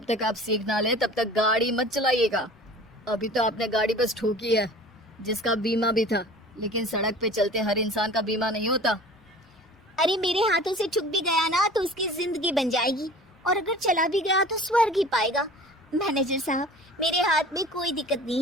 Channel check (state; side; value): normal; both; correlation 0.43